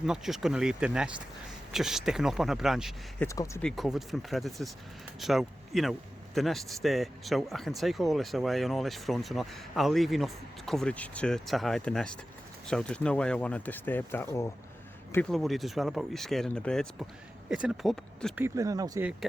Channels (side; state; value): both; normal; correlation 0.94